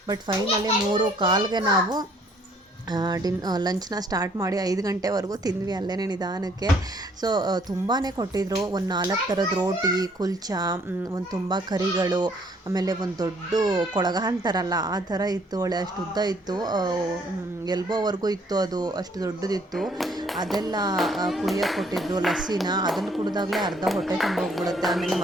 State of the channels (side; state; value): both; normal; correlation 0.63